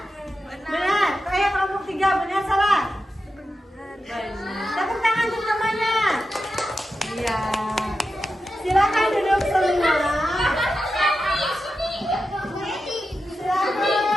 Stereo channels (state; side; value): normal; both; correlation 0.90